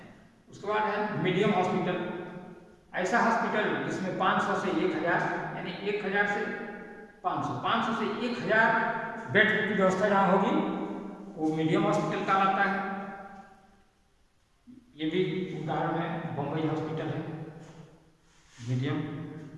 उसके बाद है मीडियम हॉस्पिटल, ऐसा हॉस्पिटल जिसमें 500 से 1000 यानी 1000 से 500 से 1000 बेड की व्यवस्था जहाँ होगी वो मीडियम हॉस्पिटल कहलाता है। ये भी उदाहरण है, बम्बई हॉस्पिटल है मीडियम।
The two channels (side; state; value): both; identical; correlation 1.00